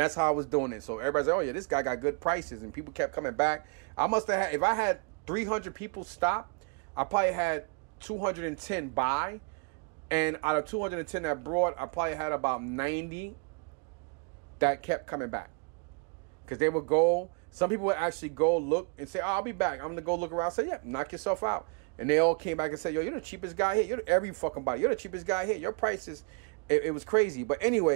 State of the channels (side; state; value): left; quieter; 36.1 dB